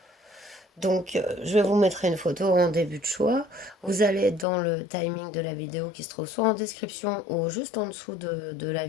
Donc, je vais vous mettre une photo en début de choix. Vous allez dans le timing de la vidéo qui se trouve soit en description ou juste en dessous de la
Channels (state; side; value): drops out; right; at 4.5 s